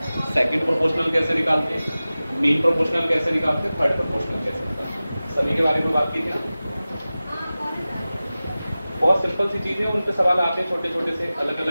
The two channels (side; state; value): both; inverted; correlation -0.96